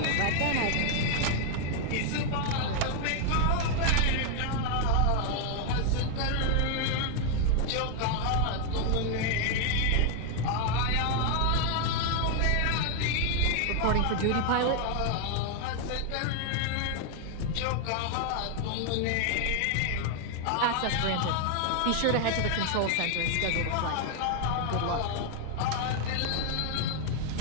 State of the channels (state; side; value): different; both; correlation 0.00